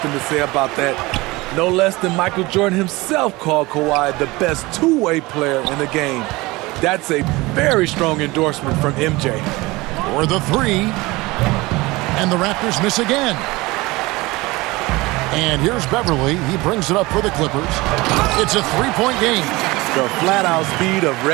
to say about that. No less than Michael Jordan himself called Kawhi the best two-way player in the game. That's a very strong endorsement from MJ. For the 3. And the Raptors miss again. And here's Beverly. He brings it up for the Clippers. It's a 3-point game. The flat-out speed of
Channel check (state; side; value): quieter; left; 21.8 dB